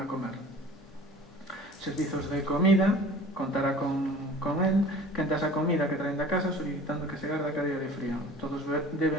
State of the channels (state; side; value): normal; both; correlation 0.44